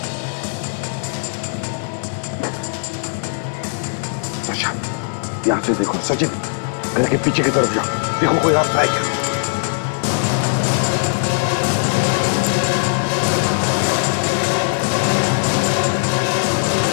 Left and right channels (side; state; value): right; silent; digital silence